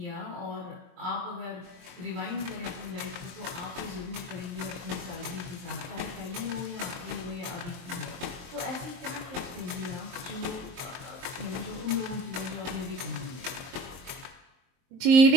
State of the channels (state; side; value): late; left; 23 ms